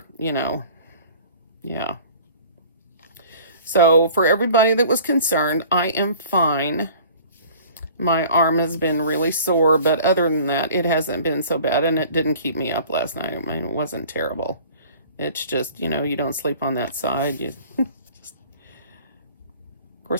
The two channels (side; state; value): both; inverted; correlation -0.47